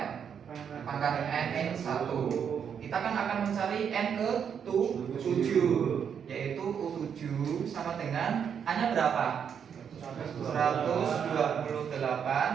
pangkat N-1. Kita kan akan mencari N ke 7, yaitu U7 sama dengan A-nya berapa?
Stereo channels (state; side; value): quieter; left; 7.6 dB